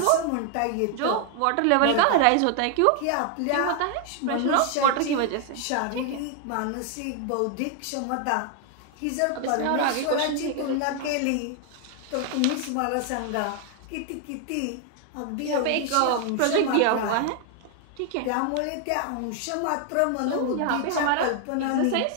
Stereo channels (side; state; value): both; different; correlation 0.00